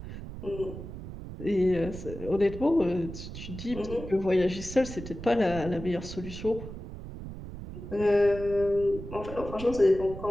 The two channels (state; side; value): noise; right; rumble, 10 dB below the sound